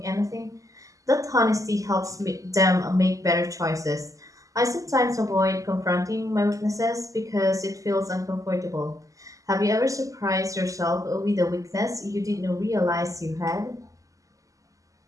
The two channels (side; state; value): left; late; 0.16 ms